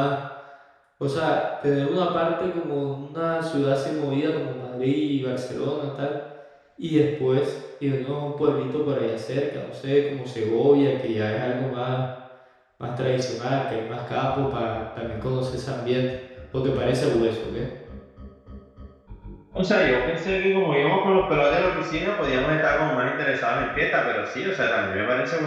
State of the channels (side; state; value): both; identical; correlation 1.00